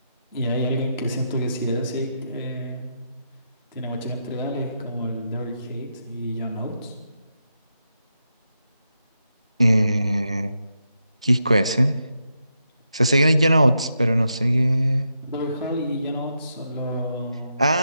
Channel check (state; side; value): inverted; both; correlation -0.84